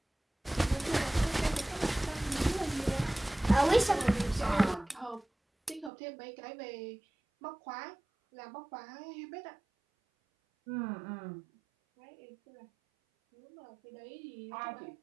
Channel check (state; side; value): drops out; left; at 5.9 s